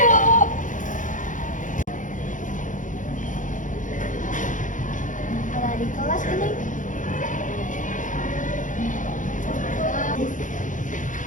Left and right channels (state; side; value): late; right; 0.37 ms